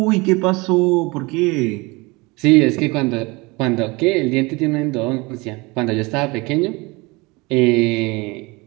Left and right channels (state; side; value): quieter; left; 25.0 dB